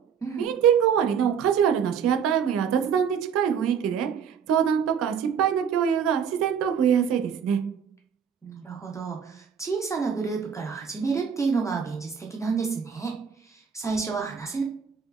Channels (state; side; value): quieter; left; 7.3 dB